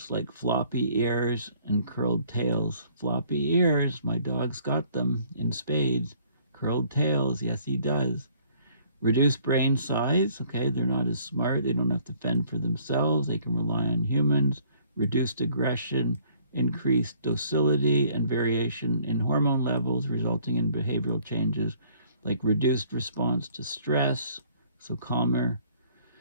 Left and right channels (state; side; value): inverted; both; correlation -0.60